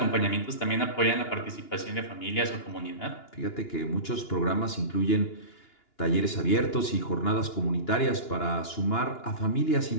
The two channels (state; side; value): late; right; 2.9 ms